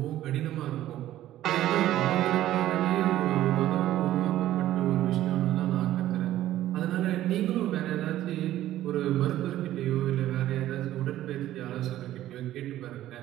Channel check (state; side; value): quieter; left; 13.6 dB